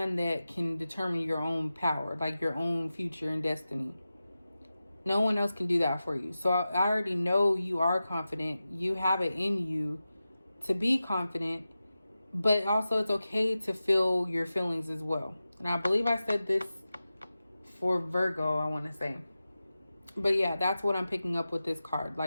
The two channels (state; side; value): inverted; both; correlation -0.94